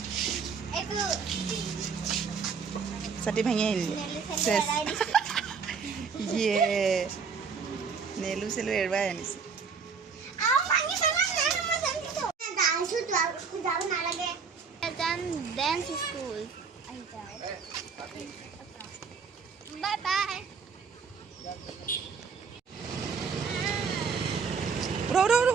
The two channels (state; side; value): quieter; left; 5.6 dB